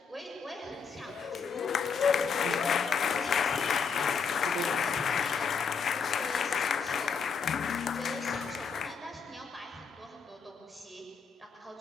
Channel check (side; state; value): right; quieter; 5.9 dB